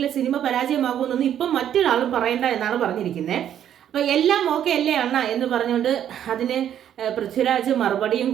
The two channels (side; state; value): left; quieter; 10.1 dB